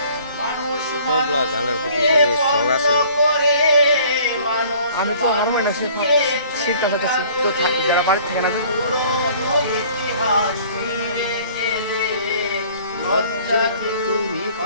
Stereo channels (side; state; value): both; inverted; correlation -0.53